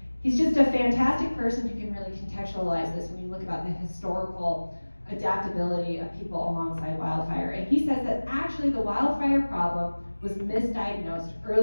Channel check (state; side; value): inverted; both; correlation -1.00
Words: he's just a fantastic person who can really contextualize this when you look about the historical adaptability of people alongside wildfire. And he says that actually the wildfire problem was misdiagnosed